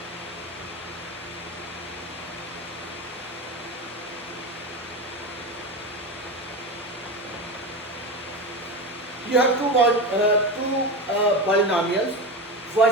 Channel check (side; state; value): both; normal; correlation 0.22